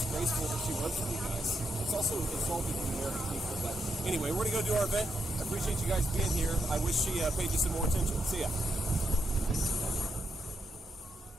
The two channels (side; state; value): both; normal; correlation 0.81